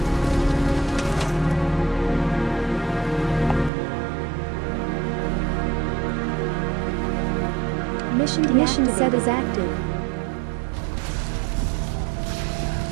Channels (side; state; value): left; drops out; at 3.7 s